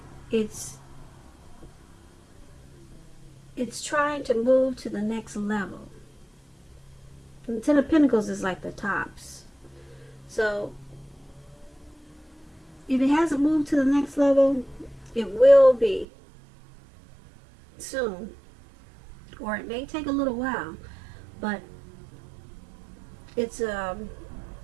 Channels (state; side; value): drops out; left; at 16.1 s